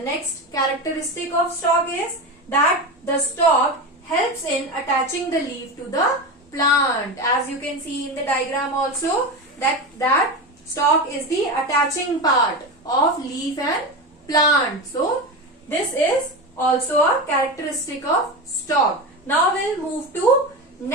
characteristic of stalk is that the stalk helps in attaching the leaf to the plant. As you can see in the diagram also, that stalk is the attaching part of leaf and plant. So this is also a characteristic of stalk. Now we'll move to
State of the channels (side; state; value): both; normal; correlation 0.22